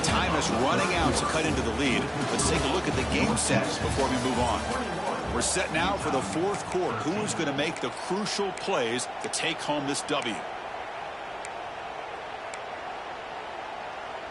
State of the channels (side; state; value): both; identical; correlation 1.00